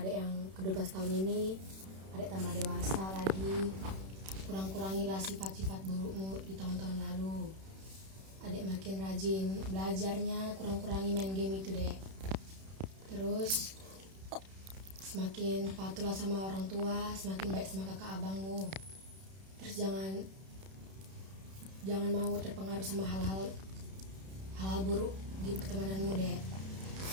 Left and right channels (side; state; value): left; late; 31 ms